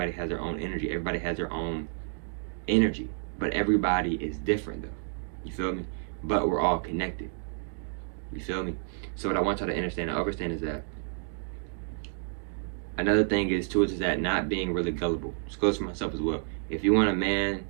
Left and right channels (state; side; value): silent; left; digital silence